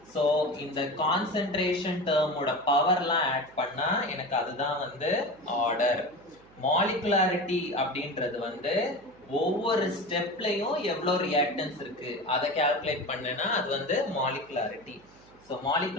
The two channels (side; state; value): right; noise; hum, 27 dB below the sound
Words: So இந்த concentration term ஓட பவர்லாம் ஆட் பண்ணா எனக்கு அதுதான் வந்து ஆர்டர். மாலிகுலாரிட்டி அப்படின்றது வந்து ஒவ்வொரு ஸ்டெப்லயும் எவ்வளவு ரியாக்டன்ஸ் இருக்கு அதை கால்குலேட் பண்ணனா அது வந்து மாலிகுலாரிட்டி. சோ